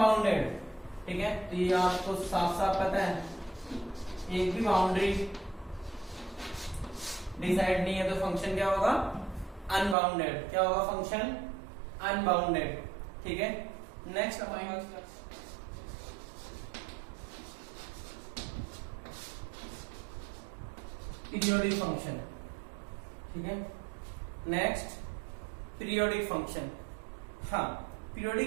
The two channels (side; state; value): left; drops out; at 10.0 s